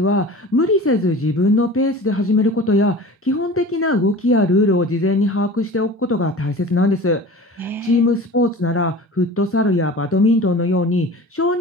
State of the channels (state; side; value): normal; both; correlation 0.38